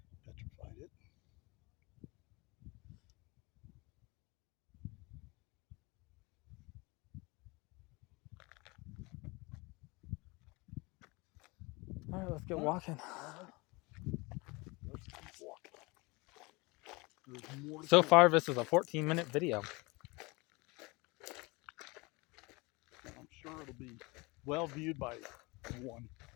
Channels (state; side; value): quieter; right; 25.6 dB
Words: petrified it. All right, let's get walking. Let's keep walking. There's more. So far, this is a 14-minute video. I'm sure it'll be well viewed by one,